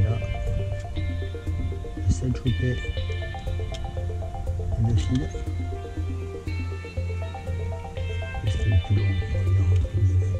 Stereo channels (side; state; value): both; identical; correlation 1.00